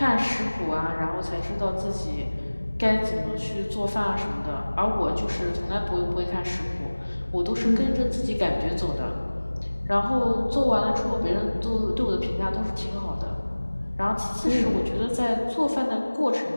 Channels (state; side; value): inverted; both; correlation -1.00